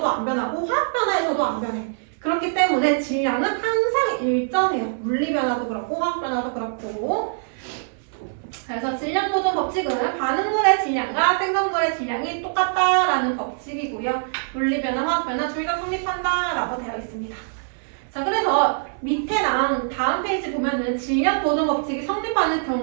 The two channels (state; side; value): silent; left; 58 dB below the other